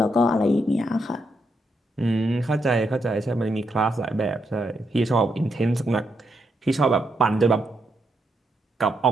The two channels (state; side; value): normal; both; correlation 0.80